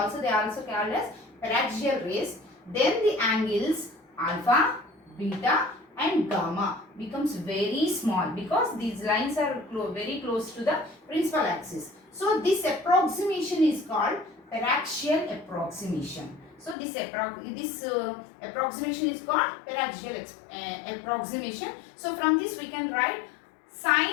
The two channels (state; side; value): drops out; right; at 16.8 s